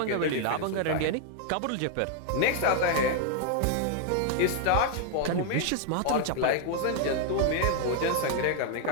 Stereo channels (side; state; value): both; different; correlation 0.00